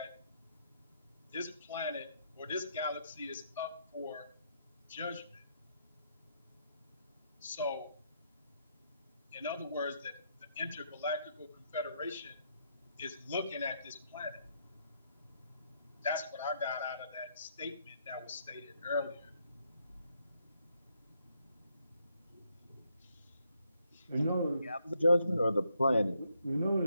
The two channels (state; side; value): inverted; both; correlation -0.76